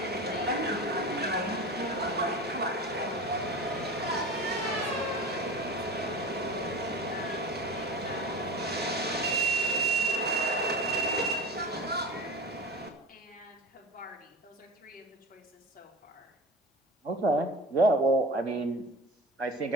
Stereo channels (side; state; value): both; normal; correlation 0.32